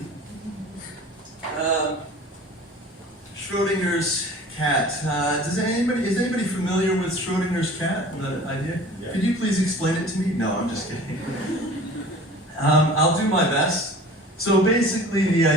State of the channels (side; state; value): both; normal; correlation 0.43